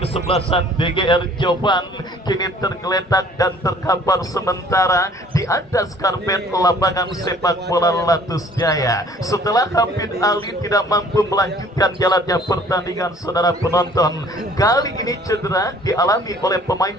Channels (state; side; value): normal; both; correlation 0.54